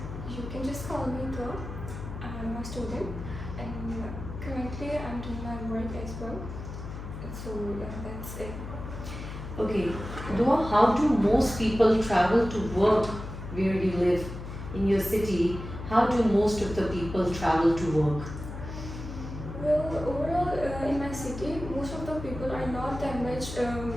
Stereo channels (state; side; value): noise; left; hum, 9 dB below the sound